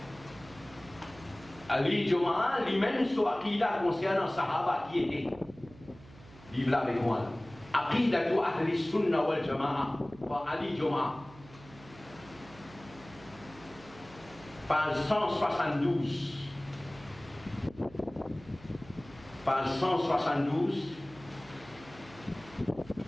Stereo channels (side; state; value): right; noise; hum, 21 dB below the sound